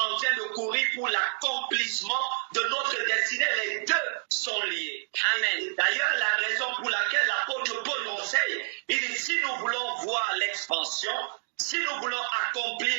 train de courir pour l'accomplissement de notre destinée. Les deux sont liés. Amen. D'ailleurs, la raison pour laquelle l'apôtre Paul nous enseigne, il dit, si nous voulons voir l'expansion, si nous voulons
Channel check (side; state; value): left; silent; digital silence